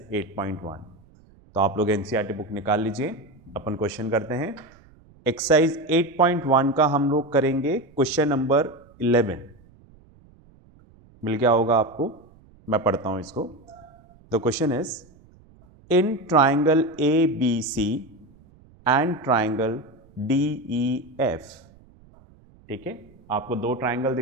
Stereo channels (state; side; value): noise; right; rumble, 27 dB below the sound